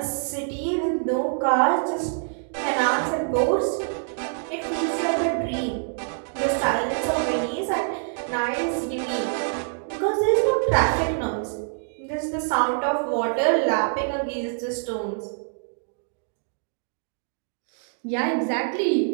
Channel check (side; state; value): left; silent; digital silence